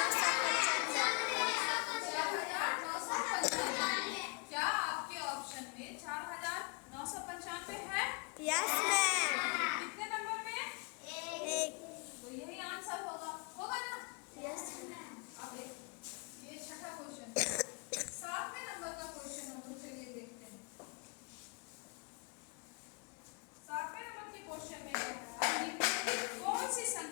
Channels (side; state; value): right; quieter; 32.4 dB